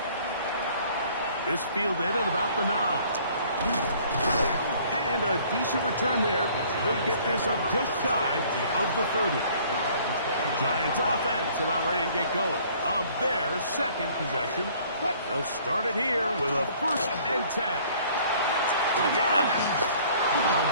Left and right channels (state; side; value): inverted; both; correlation -0.56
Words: This fielded at about the 9. And a decent return there. He'll get this up just shy of the 30. Giants offense about ready to get going on their 2nd possession. They'll start it here with a 1st and 10. Yeah. They'll